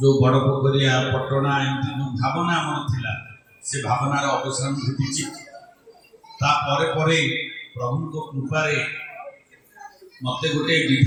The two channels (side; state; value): both; identical; correlation 1.00